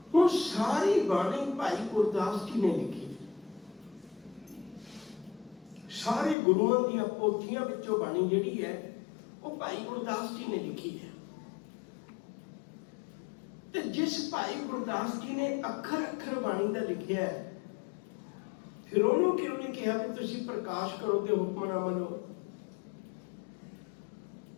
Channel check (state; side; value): drops out; right; at 6.4 s